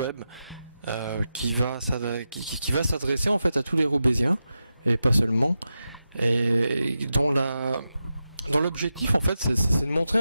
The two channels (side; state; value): both; inverted; correlation -0.90